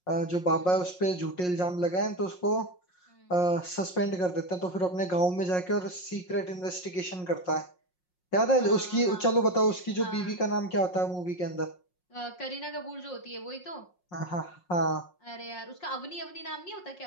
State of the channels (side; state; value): right; late; 5.5 ms